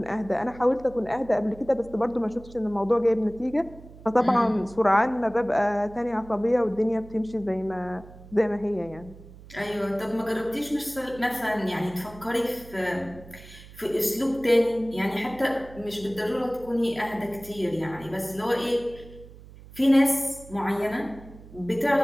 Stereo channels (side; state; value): right; noise; hum, 19 dB below the sound